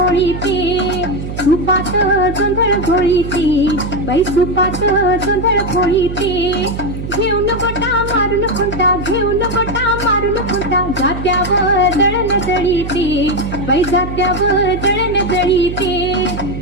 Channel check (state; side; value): noise; right; hum, 7 dB below the sound